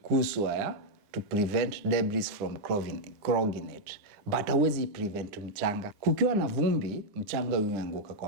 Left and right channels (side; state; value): left; late; 9.9 ms